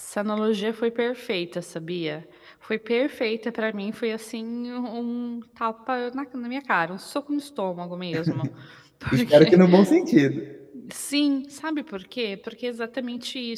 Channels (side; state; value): both; identical; correlation 1.00